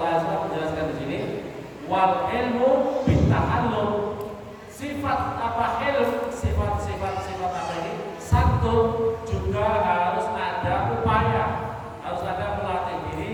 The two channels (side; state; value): both; identical; correlation 1.00